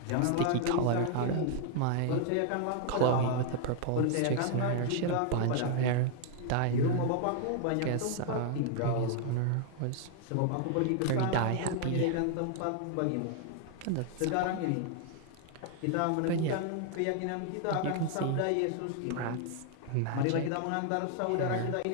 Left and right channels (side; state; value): both; different; correlation 0.00